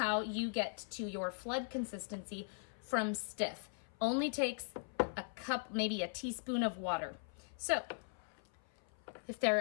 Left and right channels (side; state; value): right; silent; 51 dB below the other